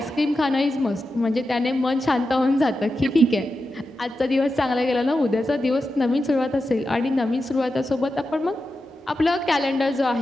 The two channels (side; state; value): both; normal; correlation 0.90